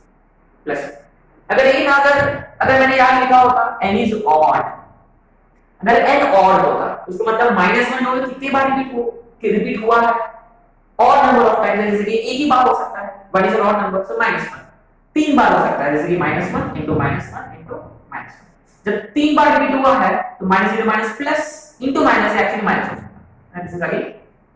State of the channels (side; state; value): both; identical; correlation 1.00